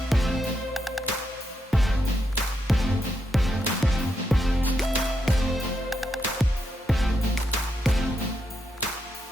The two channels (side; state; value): both; normal; correlation 0.82